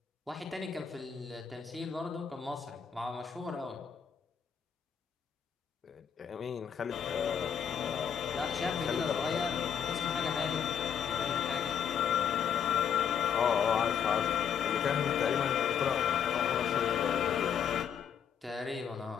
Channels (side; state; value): right; quieter; 7.8 dB